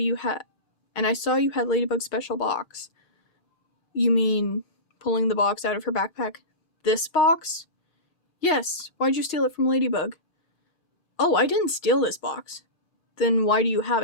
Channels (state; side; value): late; right; 2.4 ms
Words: had Ladybug's special box. You mean pulling the box out of her backpack? This box? Yes. Why'd you steal it from Ladybug? Oh, I didn't steal this box. Then why do you have